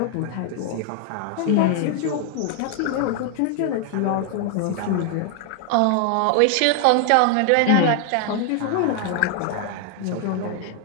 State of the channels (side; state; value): both; different; correlation 0.00